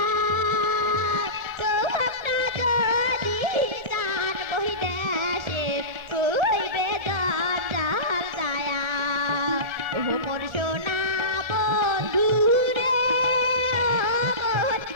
তোমরা যদি দান বহি দেশে হইবে গন্ডাল যায়া ও মোর সোনা বন্ধু রে ও মোর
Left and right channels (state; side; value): late; left; 1.7 ms